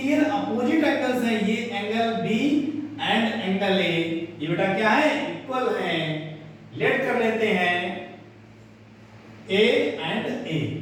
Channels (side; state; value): both; identical; correlation 1.00